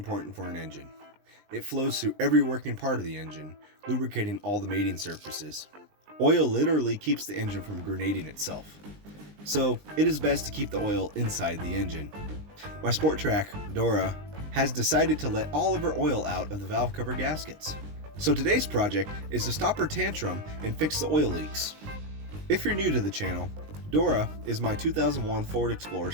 for an engine. It flows through every working part of the engine, lubricating all the mating surfaces. Oil literally keeps the engine from grenading itself. So it is best to keep the oil inside the engine. My Sport Trac, Dora, has decided to let all of her oil out of the valve cover gaskets. So today's project is to stop her tantrum and fix the oil leaks. If you're new to the channel, Dora is my 2001 Ford Explorer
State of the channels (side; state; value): left; late; 20 ms